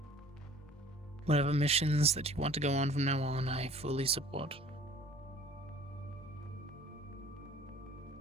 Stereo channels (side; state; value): both; normal; correlation 0.51